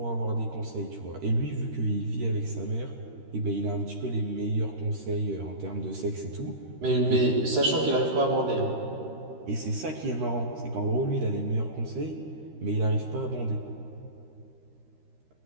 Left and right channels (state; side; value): late; left; 13 ms